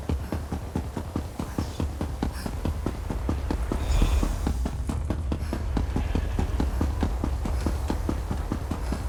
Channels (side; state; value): both; identical; correlation 1.00